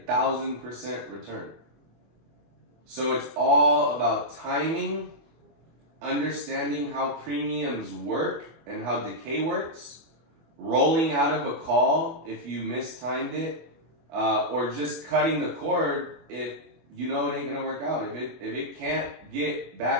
1,000% return. So it's all about timing, understanding how premiums work and how decay works, rolling out of a call if you mistimed it, or just cutting the cord if you know it ain't gonna work out. If it can't get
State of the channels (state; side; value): late; left; 24 ms